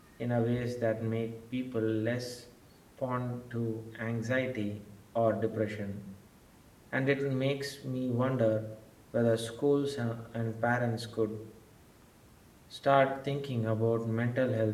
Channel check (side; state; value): both; identical; correlation 1.00